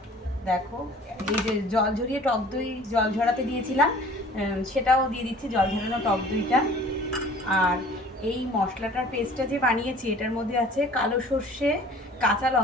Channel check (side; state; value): both; normal; correlation 0.49